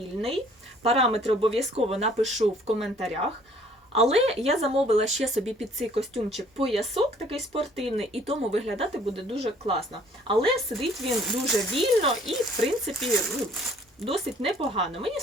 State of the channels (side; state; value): both; normal; correlation 0.58